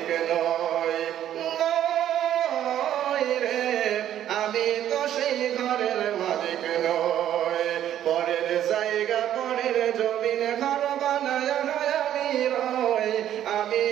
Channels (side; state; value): left; quieter; 11.2 dB